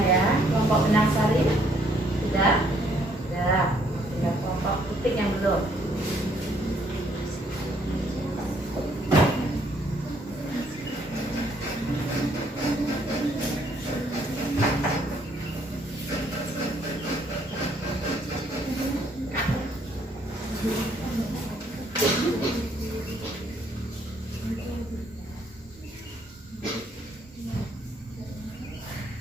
ya. Kelompok benang sari sudah. Sudah. Tinggal kelompok titik yang belum.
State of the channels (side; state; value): both; normal; correlation 0.67